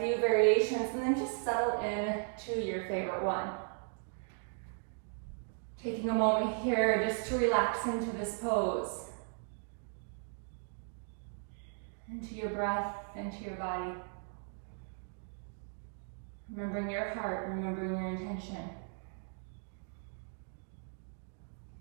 variations and then just settle in to your favorite one. Taking a moment here just to relax into this pose. Into your breath, into your body. Remembering your heart, remembering your intention.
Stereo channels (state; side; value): silent; left; 53 dB below the other